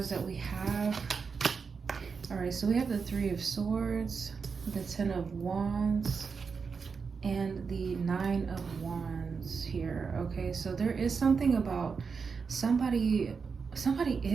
that we have. All right, so we have the Three of Swords, the Ten of Wands, and the Nine of Wands here. Okay, so there is something about somebody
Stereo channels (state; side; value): quieter; left; 5.4 dB